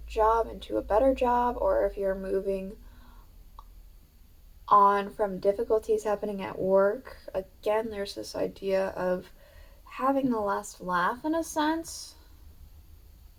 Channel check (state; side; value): identical; both; correlation 1.00